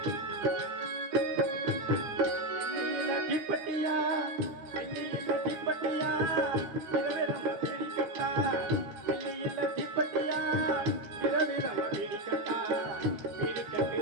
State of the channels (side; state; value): left; late; 12 ms